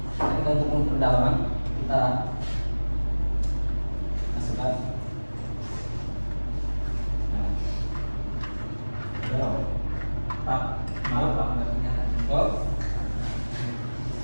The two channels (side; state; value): both; inverted; correlation -1.00